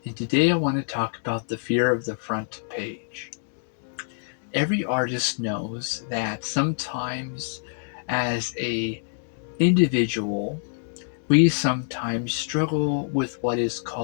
and today I want to talk about the fear of the front page. Every artist knows that sometimes as a individual, we sometimes struggle with what is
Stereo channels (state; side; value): silent; right; digital silence